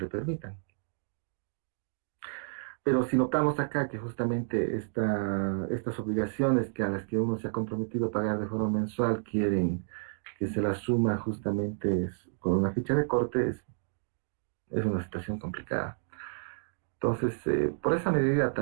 permitan. Pero si notamos acá que justamente estas obligaciones a las que uno se ha comprometido a pagar de forma mensual quieren que se las suma justamente con una ficha de corte, es una situación complicada. Entonces, por esa medida,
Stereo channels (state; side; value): silent; left; digital silence